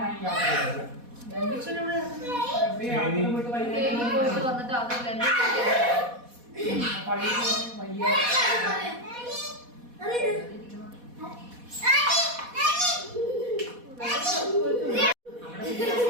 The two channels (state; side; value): late; left; 4.1 ms